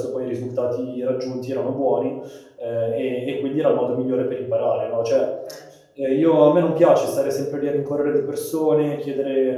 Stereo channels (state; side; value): identical; both; correlation 1.00